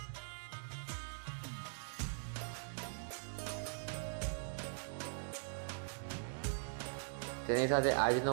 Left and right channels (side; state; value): left; silent; digital silence